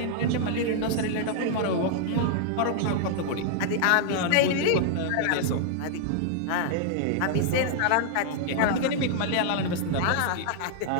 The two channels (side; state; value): both; different; correlation 0.00